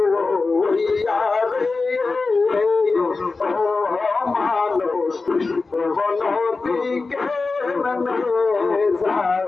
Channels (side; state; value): right; quieter; 3.9 dB